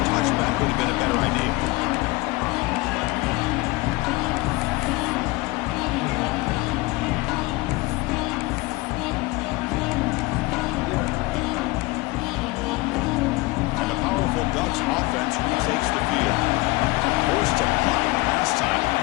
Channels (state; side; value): quieter; right; 22.4 dB